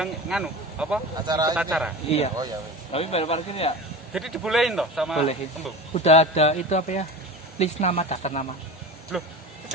nganu, apa? Acara. Iya. Oh ya. Tapi bayar parkir ya? Jadi dibolehin toh sama Bolehin. embung? Udah ada itu apa ya? List nama, daftar nama. Loh, itu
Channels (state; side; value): normal; both; correlation 0.32